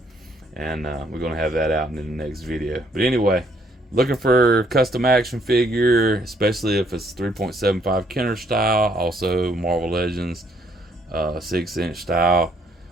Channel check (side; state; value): both; normal; correlation 0.67